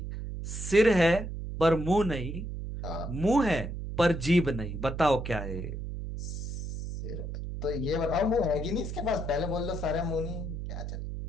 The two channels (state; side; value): noise; right; hum, 6 dB below the sound